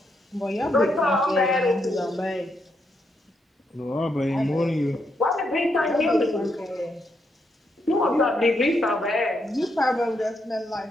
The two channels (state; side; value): normal; both; correlation 0.79